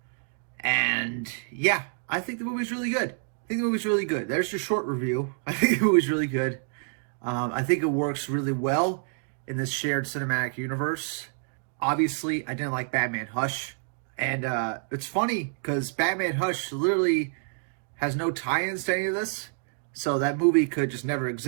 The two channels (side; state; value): left; silent; 60 dB below the other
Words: And yeah, I think the movie's really good. There's your short review. I think the movie's really good. I think it works really well in this shared cinematic universe. Obviously, I didn't like Batman Hush. And it's funny because Batman Hush literally has no tie-ins to any of this. So that movie could just never